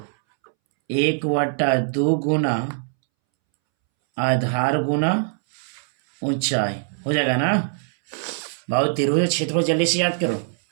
1/2 गुना आधार गुना ऊंचाई। हो जाएगा ना बाबू? त्रिभुज क्षेत्रफल जल्दी से याद करो।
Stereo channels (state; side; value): silent; left; 64 dB below the other